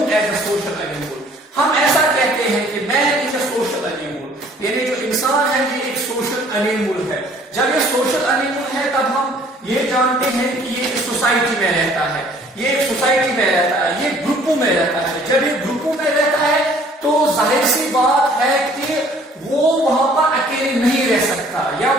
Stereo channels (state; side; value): normal; both; correlation 0.56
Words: as a social animal. ہم ایسا کہتے ہیں کہ man is a social animal. یعنی جو انسان ہے یہ ایک سوشل انیمل ہے. جب یہ سوشل انیمل ہے تب ہم یہ جانتے ہیں کہ یہ ایک سوسائٹی میں رہتا ہے، یہ ایک سوسائٹی میں رہتا ہے، یہ گروپوں میں رہتا ہے. جب یہ گروپوں میں رہتا ہے تو ظاہر سی بات ہے کہ وہ وہاں پر اکیلے نہیں رہ سکتا، یا